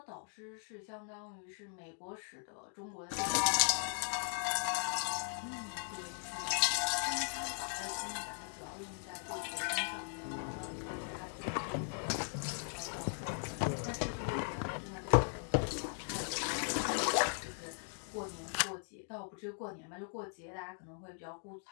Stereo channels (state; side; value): silent; right; 52 dB below the other